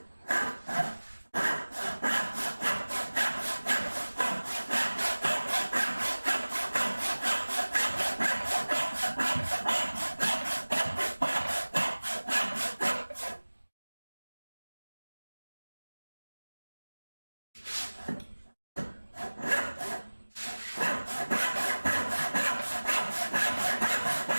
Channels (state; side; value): inverted; both; correlation -1.00